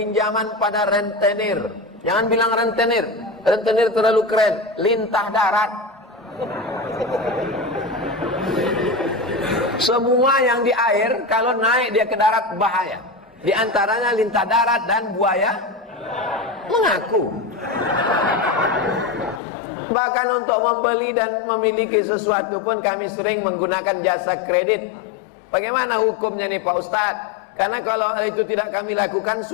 pada rentenir. Jangan bilang rentenir. Rentenir terlalu keren. Lintah darat. Semua yang di air, kalau naik dia ke darat bahaya. Di antaranya lintah darat dan buaya mengaku. Bahkan untuk membeli dan memiliki sesuatu pun kami sering menggunakan jasa kredit. Bagaimana hukumnya nih Pak Ustadz? Karena kalau itu tidak kami lakukan,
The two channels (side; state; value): right; drops out; at 19.4 s